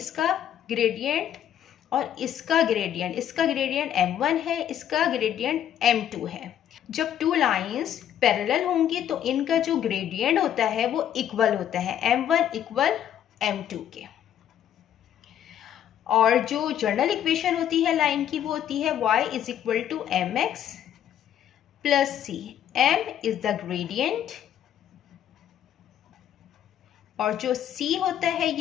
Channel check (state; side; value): quieter; right; 10.3 dB